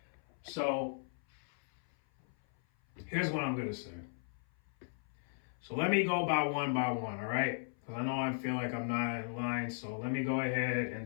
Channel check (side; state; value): right; silent; 53 dB below the other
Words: So here's what I'm gonna say. So let me go by one, all right? Because I know I feel like I'm not in line. So let me go ahead